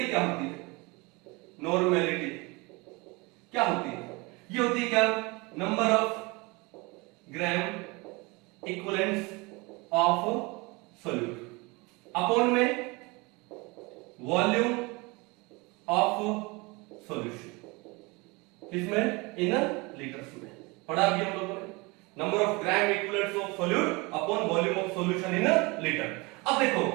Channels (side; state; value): left; quieter; 25.9 dB